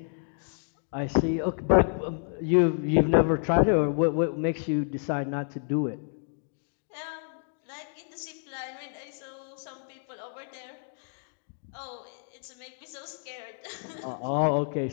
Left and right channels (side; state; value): right; silent; digital silence